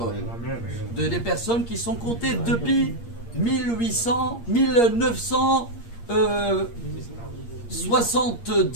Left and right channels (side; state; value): right; late; 8.6 ms